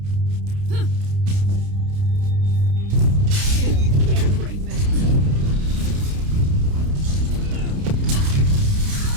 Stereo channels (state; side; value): late; left; 30 ms